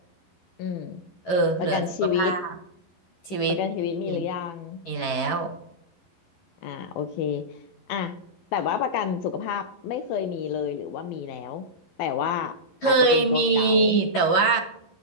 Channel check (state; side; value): late; right; 11 ms